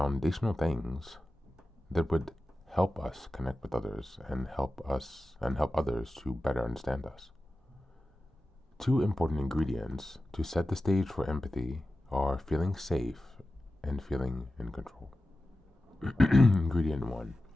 things that would help us connect with others and help others to better understand us. Two important ingredients to set the stage for empathy are feeling safe and feeling in control. Ingredient 1.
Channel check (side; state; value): both; normal; correlation 0.94